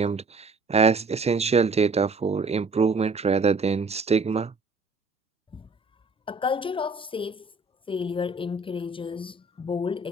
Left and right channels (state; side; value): quieter; left; 3.4 dB